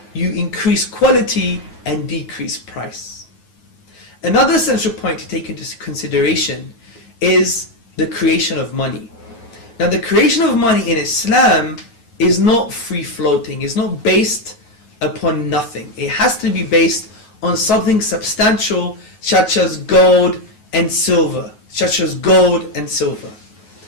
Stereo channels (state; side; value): late; right; 9.3 ms